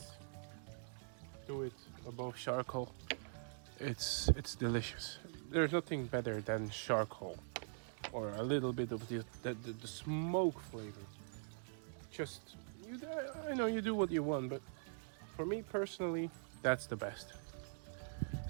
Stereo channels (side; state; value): left; silent; digital silence